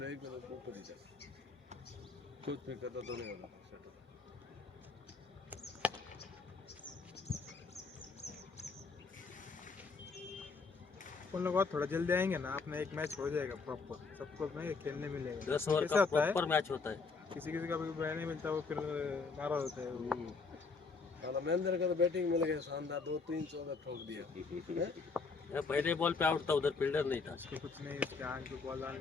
एक ऊपर ही था. कुछ नहीं करता तो नहीं होता. अपन लोग और थोड़ा जल्दी आएंगे ना, अपना एक मैच हो जाएगा प्रॉपर, सबको नहीं खेलने मिलेगा। 10 ओवर कैसा का होता है, प्रॉपर मैच होता है। किसी किसी का भी बैट नहीं मिलता, वो फिर नाराज होता है वो। महेंद्र का तो बैटिंग मिल गया शानदार, 2-3 चौका ठोक दिया। ये पहले बॉल पे आउट था, उधर फील्डर नहीं था। उसको कुछ नहीं, उसके आंख पे बॉल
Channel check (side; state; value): right; quieter; 4.5 dB